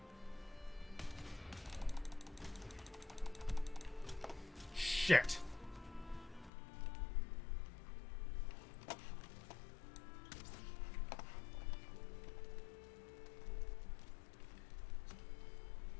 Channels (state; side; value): drops out; right; at 6.5 s